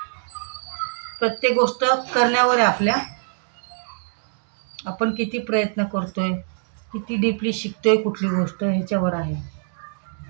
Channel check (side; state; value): left; silent; digital silence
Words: प्रत्येक गोष्ट करण्यावर आहे आपल्या, आपण किती प्रयत्न करतोय, किती डीपली शिकतोय कुठली गोष्ट, ह्याच्यावर आहे.